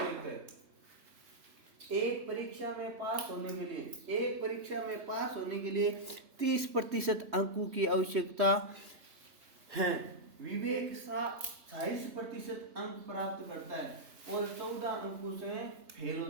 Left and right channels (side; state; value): left; late; 3.5 ms